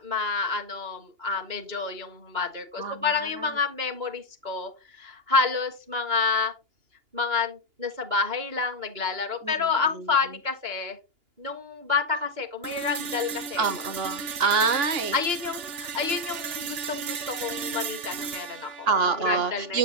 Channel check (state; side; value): late; left; 2.8 ms